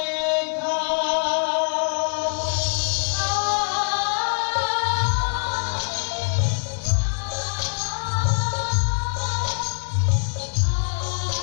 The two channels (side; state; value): right; silent; 63 dB below the other